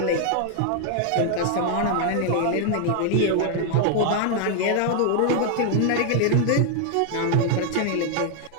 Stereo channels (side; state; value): both; different; correlation 0.00